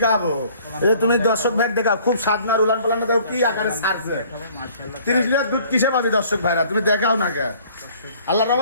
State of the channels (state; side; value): inverted; both; correlation -0.55